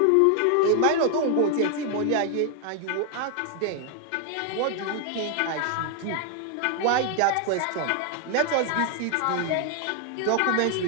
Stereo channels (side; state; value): both; different; correlation 0.00